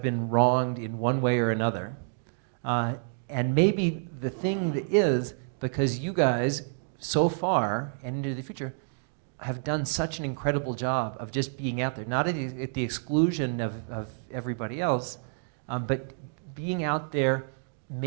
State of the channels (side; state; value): left; silent; digital silence